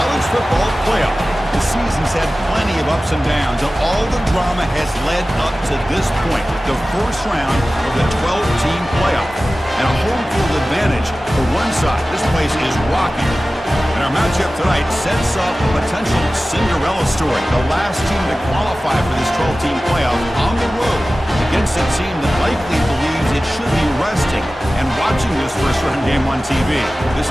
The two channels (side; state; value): both; normal; correlation 0.96